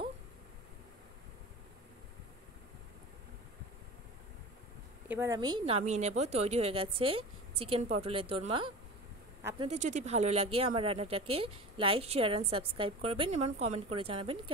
এবার আমি নামিয়ে নেব। তৈরি হয়ে গেছে চিকেন পটলের দোরমা। আপনাদের যদি ভালো লাগে আমার রান্নাটাকে লাইক, শেয়ার অ্যান্ড সাবস্ক্রাইব করবেন এবং কমেন্ট করে জানাবেন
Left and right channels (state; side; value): normal; both; correlation 0.32